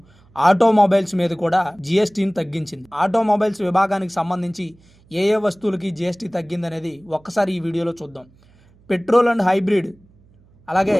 automobiles మీద కూడా జీఎస్టీని తగ్గించింది. ఆటోమొబైల్స్ విభాగానికి సంబంధించి ఏ ఏ వస్తువులకి జీఎస్టీ తగ్గిందనేది ఒక్కసారి ఈ వీడియోలో చూద్దాం. పెట్రోల్ అండ్ హైబ్రిడ్ అలాగే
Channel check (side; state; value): right; noise; hum, 30 dB below the sound